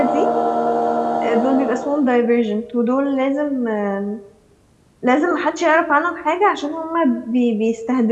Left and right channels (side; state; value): both; identical; correlation 1.00